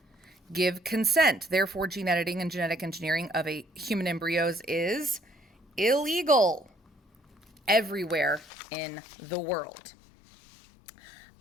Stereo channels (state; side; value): drops out; right; at 8.5 s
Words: give consent. Therefore, gene editing and genetic engineering of a human embryos is illegal everywhere in the world.